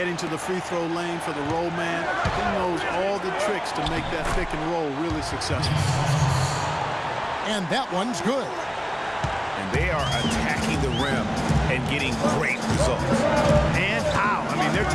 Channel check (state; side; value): identical; both; correlation 1.00